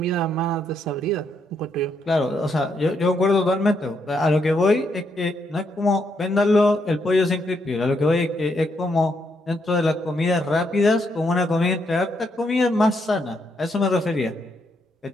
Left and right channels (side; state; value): both; normal; correlation 0.77